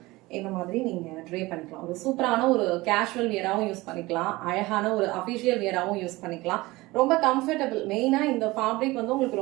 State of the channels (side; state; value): left; quieter; 20.6 dB